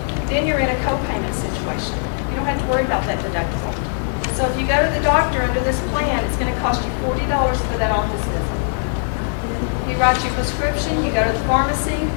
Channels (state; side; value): silent; right; 60 dB below the other